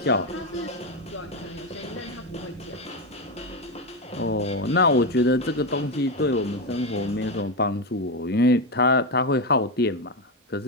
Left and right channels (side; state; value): both; normal; correlation 0.11